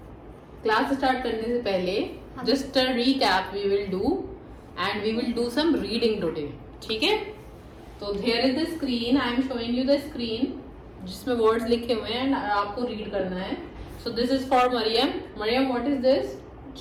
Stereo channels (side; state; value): both; identical; correlation 1.00